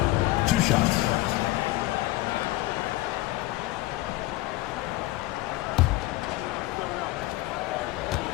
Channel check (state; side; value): quieter; right; 18.2 dB